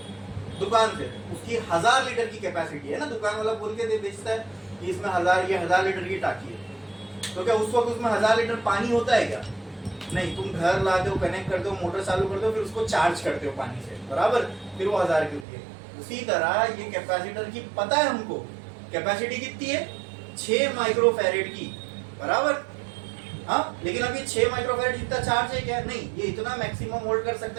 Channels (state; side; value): drops out; left; at 15.5 s